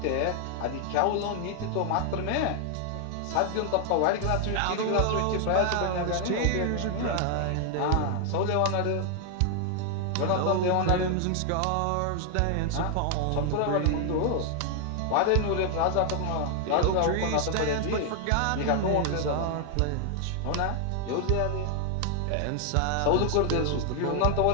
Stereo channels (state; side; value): different; both; correlation 0.00